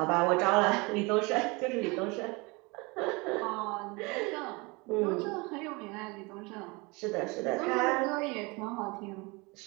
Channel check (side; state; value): left; quieter; 26.7 dB